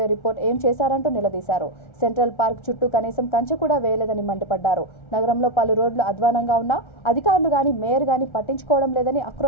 రిపోర్ట్ ఏం చేశారంటూ నిలదీశారు. సెంట్రల్ పార్క్ చుట్టూ కనీసం కంచె కూడా వేయలేదని మండిపడ్డారు. నగరంలో పలు రోడ్లు అధ్వానంగా ఉన్నా అధికారులు గాని మేయర్ గాని పట్టించుకోవడం లేదని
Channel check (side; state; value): right; late; 1.3 ms